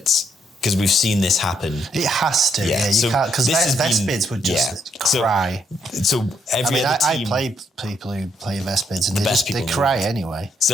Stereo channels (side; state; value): both; normal; correlation 0.74